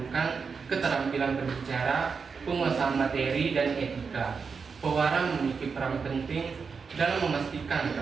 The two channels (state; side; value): quieter; left; 5.4 dB